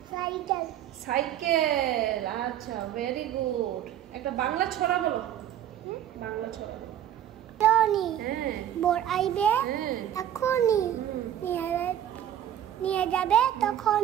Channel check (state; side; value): quieter; left; 11.0 dB